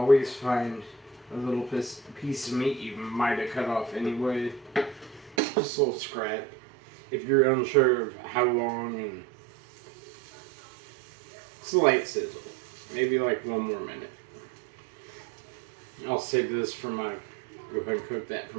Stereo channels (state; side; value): drops out; left; at 5.4 s